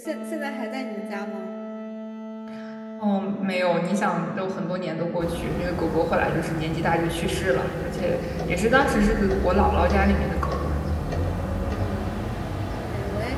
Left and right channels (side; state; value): both; identical; correlation 1.00